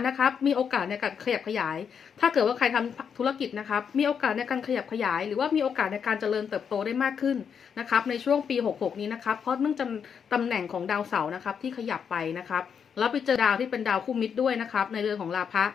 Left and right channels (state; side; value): quieter; right; 7.1 dB